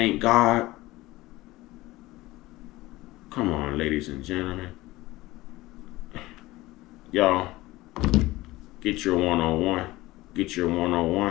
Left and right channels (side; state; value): right; quieter; 18.8 dB